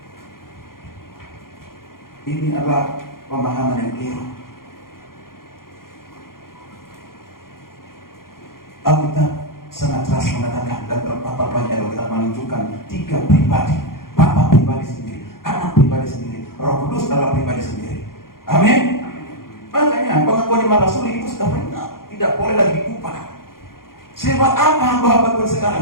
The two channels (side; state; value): right; late; 0.92 ms